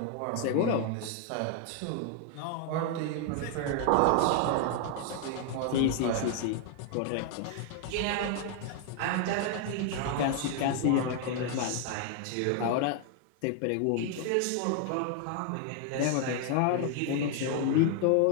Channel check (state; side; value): different; both; correlation 0.00